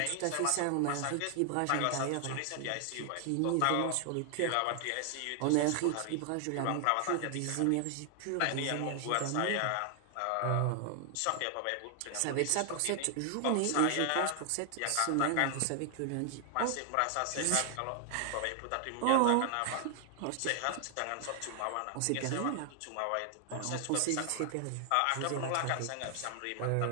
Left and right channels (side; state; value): both; different; correlation 0.00